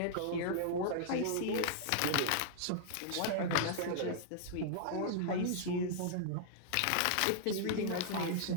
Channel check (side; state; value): both; different; correlation -0.01